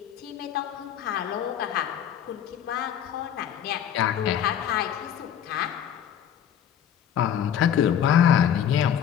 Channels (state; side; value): quieter; right; 9.4 dB